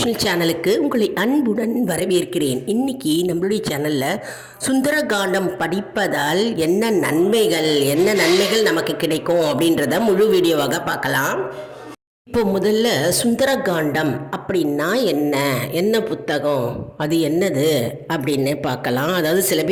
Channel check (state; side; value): identical; both; correlation 1.00